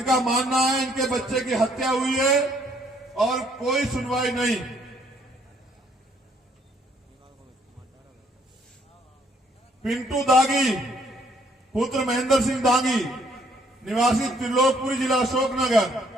मानना है इनके बच्चे की हत्या हुई है और कोई सुनवाई नहीं। पिंटू दागी पुत्र महेंद्र सिंह दागी निवासी त्रिलोकपुरी जिला अशोकनगर,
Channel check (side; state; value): both; normal; correlation 0.66